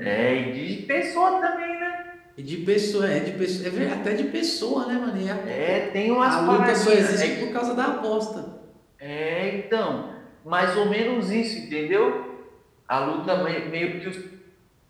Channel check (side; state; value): both; identical; correlation 1.00